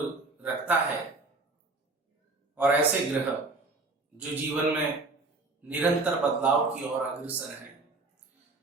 रखता है। और ऐसे ग्रह जो जीवन में निरंतर बदलाव की ओर अग्रसर हैं।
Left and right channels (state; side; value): quieter; left; 3.4 dB